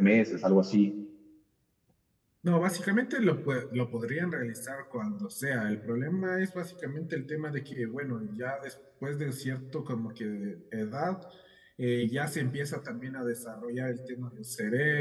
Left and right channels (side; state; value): both; identical; correlation 1.00